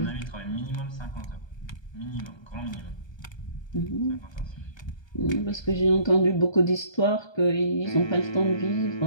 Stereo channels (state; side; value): late; right; 1.3 ms